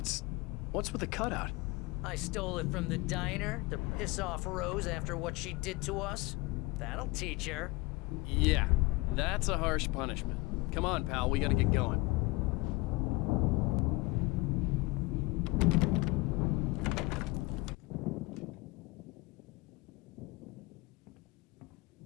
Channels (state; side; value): quieter; right; 22.8 dB